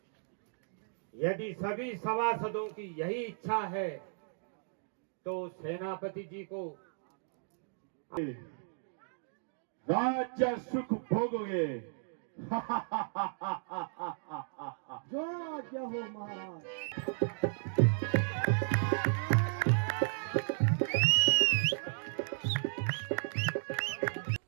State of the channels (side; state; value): left; silent; digital silence